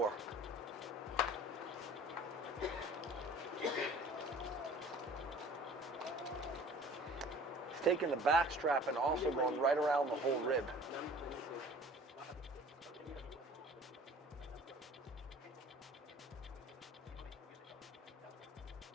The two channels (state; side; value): normal; both; correlation 0.47